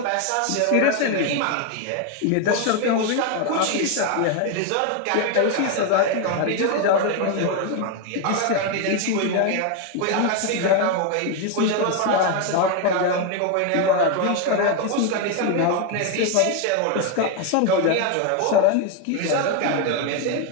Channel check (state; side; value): different; both; correlation 0.01